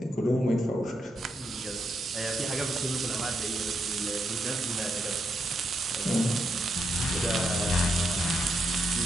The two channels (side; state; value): both; normal; correlation 0.81